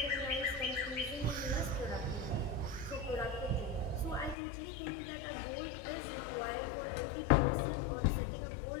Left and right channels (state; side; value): drops out; right; at 4.4 s